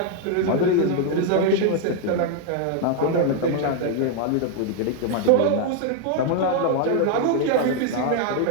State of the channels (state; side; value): different; both; correlation 0.00